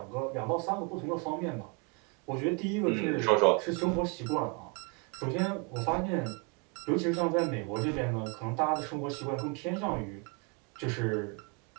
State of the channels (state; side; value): quieter; left; 32.2 dB